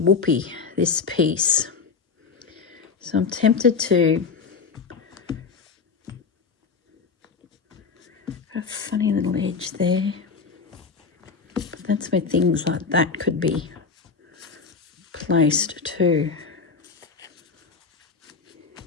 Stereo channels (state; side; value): quieter; right; 5.2 dB